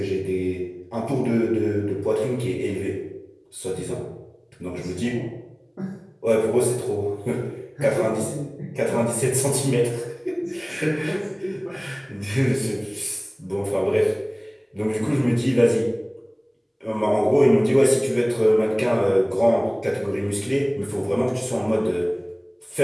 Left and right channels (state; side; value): identical; both; correlation 1.00